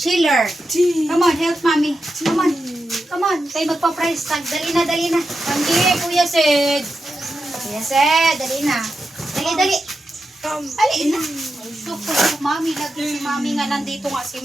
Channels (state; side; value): normal; both; correlation 0.89